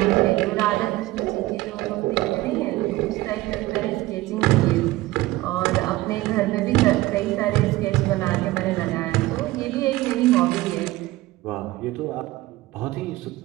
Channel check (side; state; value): left; quieter; 18.1 dB